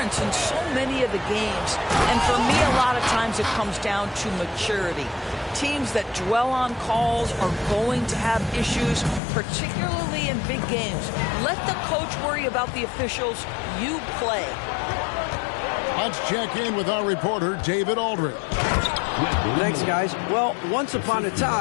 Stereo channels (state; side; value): drops out; right; at 9.2 s